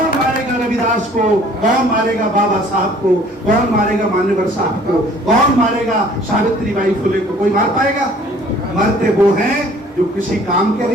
मारेगा रविदास को? कौन मारेगा बाबा साहब को? कौन मारेगा मान्यवर साहब को? कौन मारेगा सावित्रीबाई फुले को? कोई मार पाएगा? मरते वो हैं जो किसी काम के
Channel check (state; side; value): normal; both; correlation 0.54